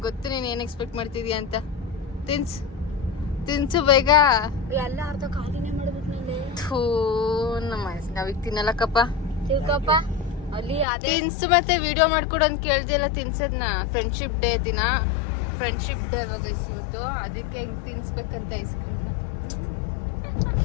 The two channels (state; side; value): drops out; right; at 10.9 s